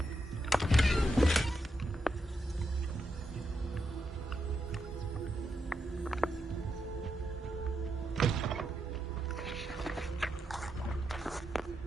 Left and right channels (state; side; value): normal; both; correlation 0.84